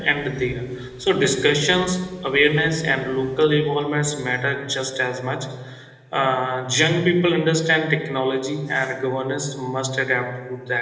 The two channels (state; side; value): identical; both; correlation 1.00